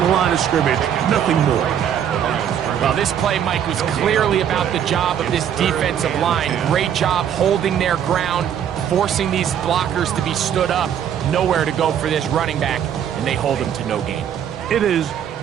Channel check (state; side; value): quieter; left; 9.2 dB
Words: line of scrimmage. Nothing more. Well, this play, Mike, was clearly about the job of this defensive line. Great job holding their ground, forcing these blockers to be stood up. Nowhere to go for this running back, and they hold him to no gain. It is